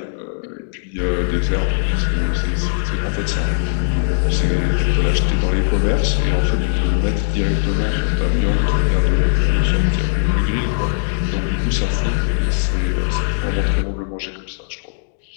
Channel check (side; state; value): right; silent; digital silence